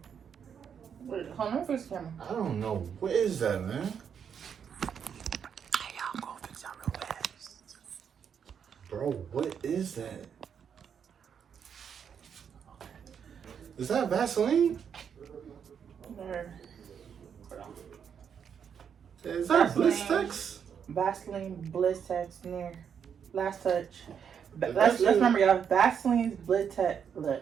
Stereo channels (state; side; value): quieter; left; 7.6 dB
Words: Wait, hold on, fix the camera. I don't know. What is that, man? Hey, y'all, go fix y'all real fast. Bro, what is that? Is that Vaseline? There. Hold on. Is that Vaseline. Blistex? Vaseline Blistex near last touch. That's Let's it. remember y'all. Vaseline's Blistex.